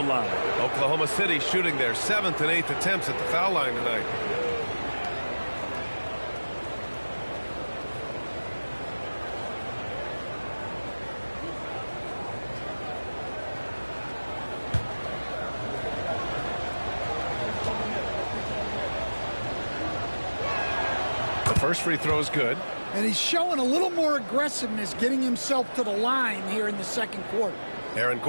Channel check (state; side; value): inverted; both; correlation -1.00